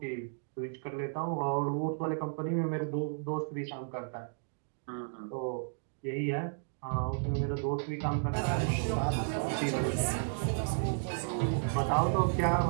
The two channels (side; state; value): left; silent; digital silence